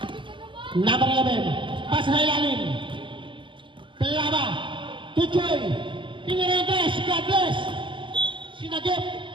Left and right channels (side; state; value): left; late; 0.24 ms